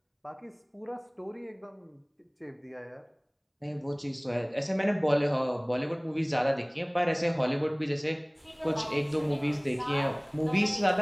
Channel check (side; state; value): both; identical; correlation 1.00